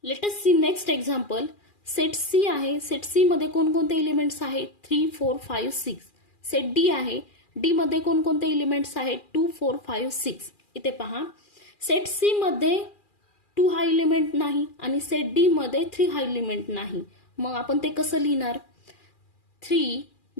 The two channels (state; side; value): late; right; 2.4 ms